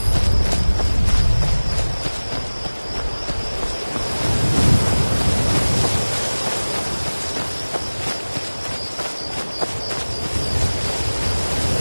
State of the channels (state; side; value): inverted; both; correlation -1.00